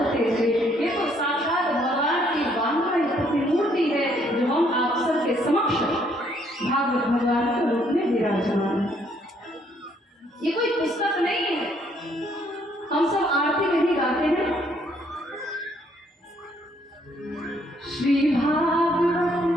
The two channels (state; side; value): normal; both; correlation 0.67